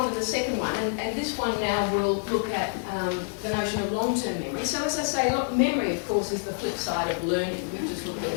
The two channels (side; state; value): right; silent; digital silence